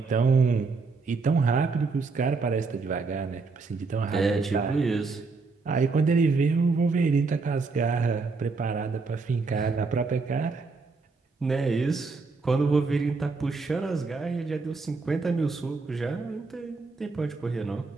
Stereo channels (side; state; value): left; quieter; 4.2 dB